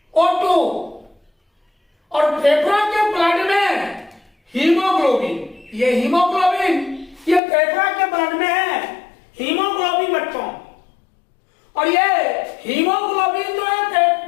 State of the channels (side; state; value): right; drops out; at 7.4 s